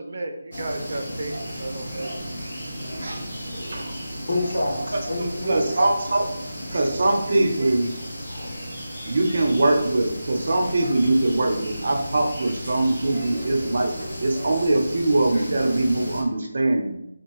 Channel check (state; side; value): inverted; both; correlation -0.94